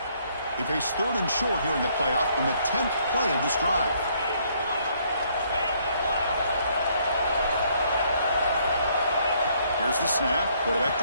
They face 3rd and short here in the playoff on the 10th play of this drive. Here's the snap. Quarterback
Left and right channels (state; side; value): inverted; both; correlation -0.67